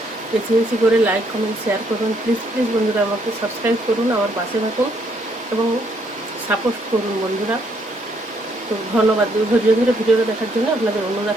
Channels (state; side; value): normal; both; correlation 0.71